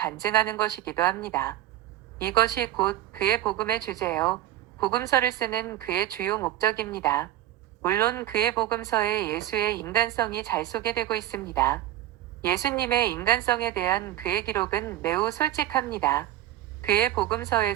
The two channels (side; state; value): left; quieter; 13.4 dB